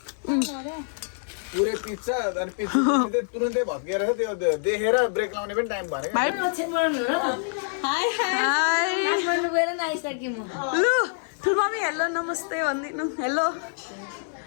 पुरै पिज्जा अनि पिज्जा तुरुन्तै भत्किएर त्यो देखेर ब्रेक लाउने पनि टाइम भएन हाई लु ठुल्मामी हेलो नमस्ते भनिदिनु हेलो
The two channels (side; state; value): right; silent; 61 dB below the other